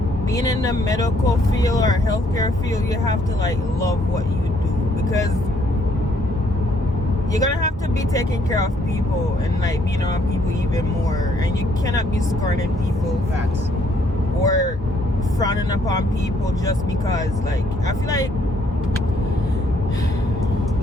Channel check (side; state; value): both; normal; correlation 0.68